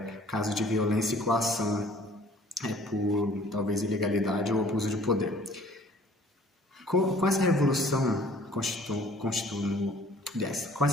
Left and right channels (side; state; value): both; normal; correlation 0.54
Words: casos de violência e coação por talvez ilegalidade ou abuso de poder. Com essa revolução